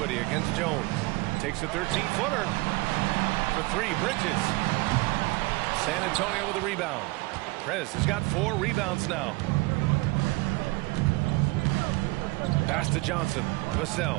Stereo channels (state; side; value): quieter; left; 23.5 dB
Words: against Jones. Takes a 13-footer. For 3, Bridges. San Antonio with a rebound. Prez has got 4 rebounds now. Pass to Johnson.